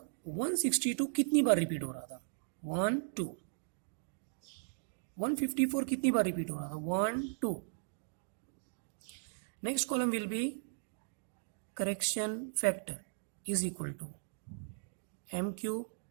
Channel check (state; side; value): silent; left; digital silence